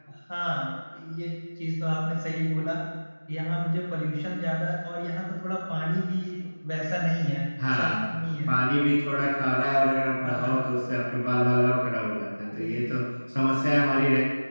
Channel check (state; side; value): inverted; both; correlation -1.00